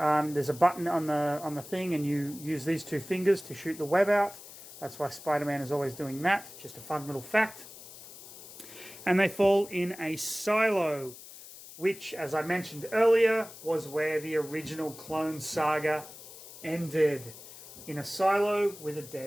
a button on the thing, and you use these 2 fingers to shoot the web out. That's why Spider-Man is always doing that. Just a fun little fact. And they fall in a silo, which, as I mentioned earlier, was where the original Clone Saga ended. In a silo with a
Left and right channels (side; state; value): left; noise; hiss, 16 dB below the sound